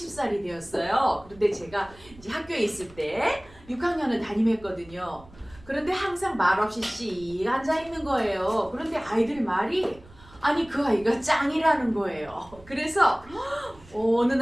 되었어요. 그런데 제가 이제 학교에 있을 때 6학년을 담임했거든요. 그런데 항상 말없이 씩 앉아 있는 거예요. 그런데 아이들 말이 아니 그 아이가 짱이라는 거예요. 그래서 어느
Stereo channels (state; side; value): noise; right; rumble, 23 dB below the sound